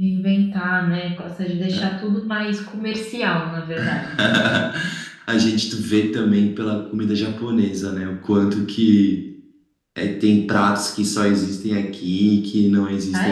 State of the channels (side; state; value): both; identical; correlation 1.00